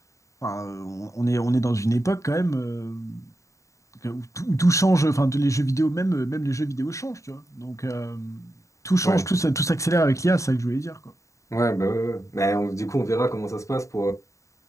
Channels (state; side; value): late; right; 0.15 ms